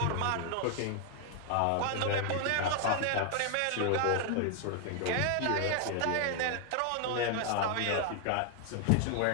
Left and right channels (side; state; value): both; different; correlation 0.00